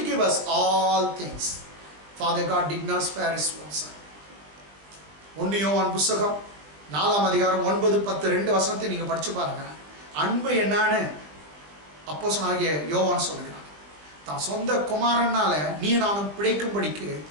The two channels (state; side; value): late; left; 20 ms